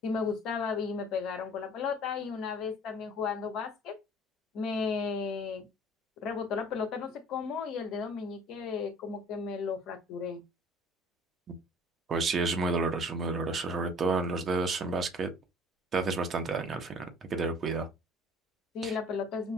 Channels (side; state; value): both; normal; correlation 0.49